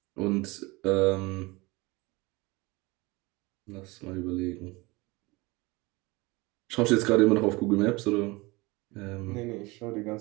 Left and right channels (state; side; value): quieter; left; 23.7 dB